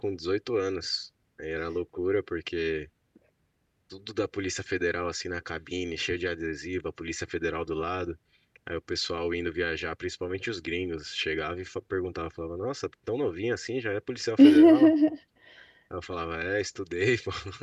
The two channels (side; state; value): both; identical; correlation 1.00